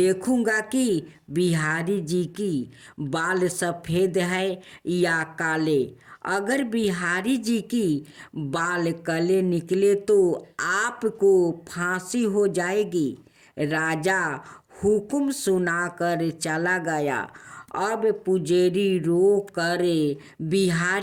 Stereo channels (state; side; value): identical; both; correlation 1.00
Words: कि बिहारी जी की बाल सफ़ेद है या काले। अगर बिहारी जी की बाल काले निकले तो आपको फांसी हो जाएगी। राजा हुक्म सुनाकर चला गया। अब पुजेरी रो कर